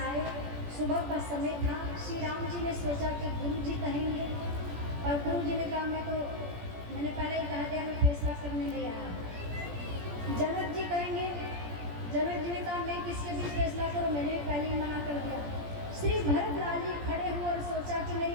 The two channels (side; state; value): left; late; 17 ms